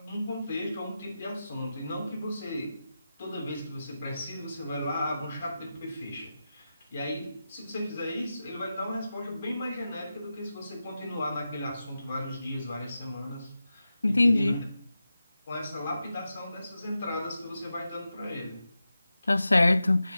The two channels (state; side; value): inverted; both; correlation -0.92